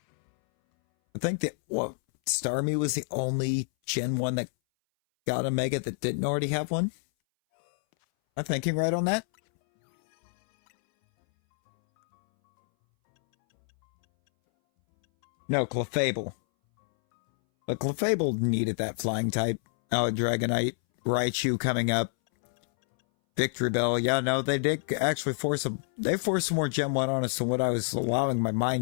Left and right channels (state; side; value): silent; right; 60 dB below the other